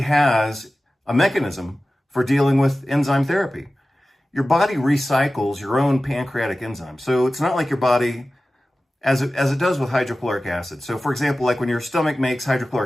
has a mechanism for dealing with enzyme therapy. Your body recycles your own pancreatic enzymes. So it's not like your body, as it does with hydrochloric acid. So for example, like when your stomach makes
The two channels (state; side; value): normal; both; correlation 0.96